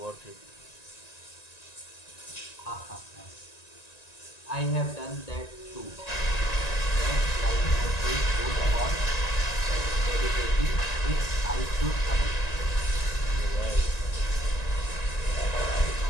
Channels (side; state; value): right; late; 1.9 ms